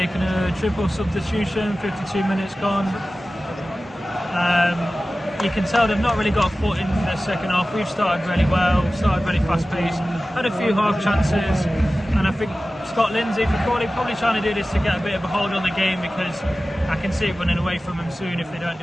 a triple substitution, 52 minutes gone. You can tell they've not really got a foot in the second half. We've started really well, started really fast paced, had a few half chances, and I think Scott Lindsay for Crawley probably trying to do this to get a bit of a hold on the game, because I can see it running away from them soon if they don't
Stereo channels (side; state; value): both; normal; correlation 0.96